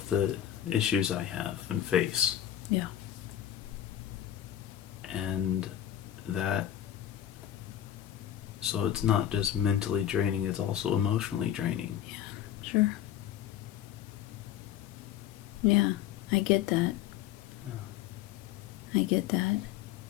the issues I have and face. Yeah. And that, so it's not just mentally draining, it's also emotionally draining. Yeah, sure. Yeah, I get that. I get that.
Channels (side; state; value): right; quieter; 11.2 dB